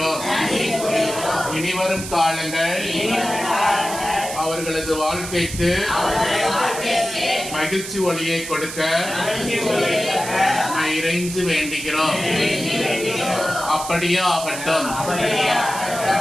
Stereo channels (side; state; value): right; noise; hiss, 9 dB below the sound